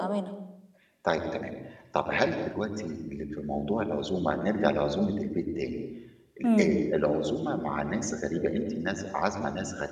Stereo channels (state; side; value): identical; both; correlation 1.00